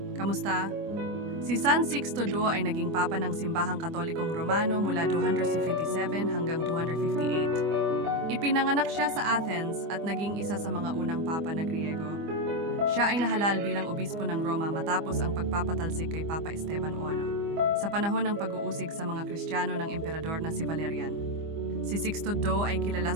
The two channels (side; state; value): left; late; 25 ms